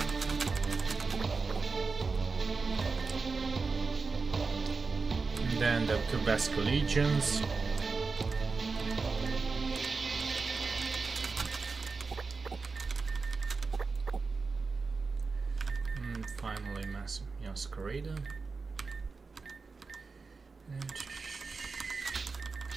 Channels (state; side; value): quieter; left; 4.4 dB